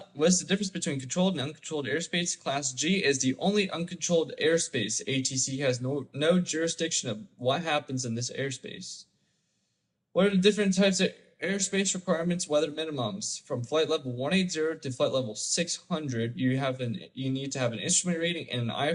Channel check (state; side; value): identical; both; correlation 1.00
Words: difference between controlled and uncontrolled airspace? Class G is the only uncontrolled airspace. ATC has no jurisdiction of what happens in this airspace. What are the different types of airspace requirements, weather minimums? From flight level 180 to flight level 600, you need to have an instrument rating and an